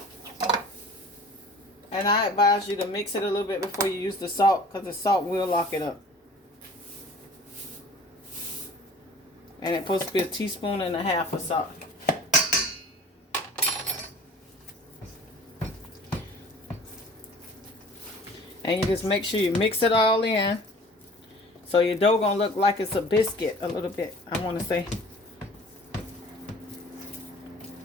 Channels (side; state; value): both; normal; correlation 0.46